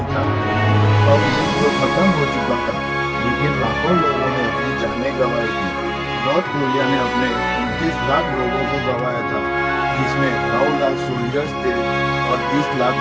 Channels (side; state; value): both; identical; correlation 1.00